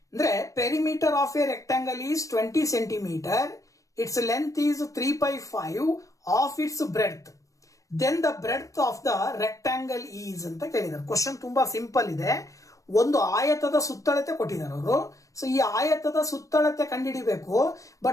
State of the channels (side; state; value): right; late; 0.16 ms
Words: ಅಂದ್ರೆ perimeter of a rectangle is 20 centimetre, its length is 3/5 of its breadth, then the breadth of the rectangle is ಅಂತ ಕೇಳಿದ್ದಾರೆ. ಕ್ವಶನ್ ತುಂಬಾ ಸಿಂಪಲ್ ಇದೆ. ಒಂದು ಆಯತದ ಸುತ್ತಳತೆ ಕೊಟ್ಟಿದ್ದಾರೆ ಅವರು. ಸೊ ಈ ಆಯತದ ಸುತ್ತಳತೆ ಕಂಡುಹಿಡಿಬೇಕು.